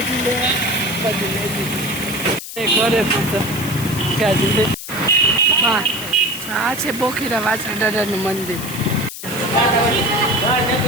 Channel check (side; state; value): left; noise; hiss, 10 dB below the sound